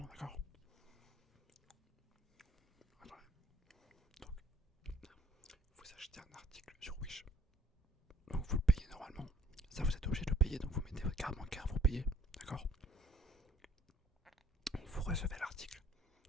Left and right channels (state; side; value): normal; both; correlation 0.59